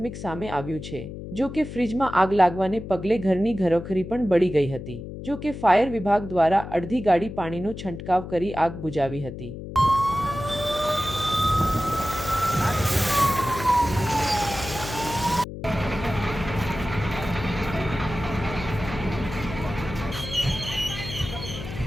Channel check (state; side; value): noise; left; hum, 10 dB below the sound